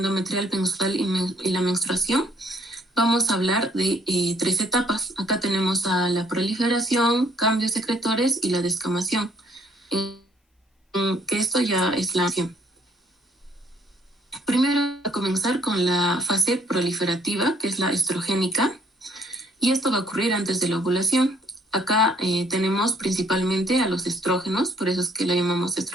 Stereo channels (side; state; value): both; normal; correlation 0.63